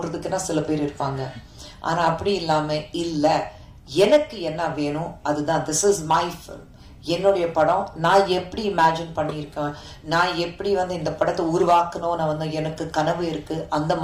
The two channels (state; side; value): identical; both; correlation 1.00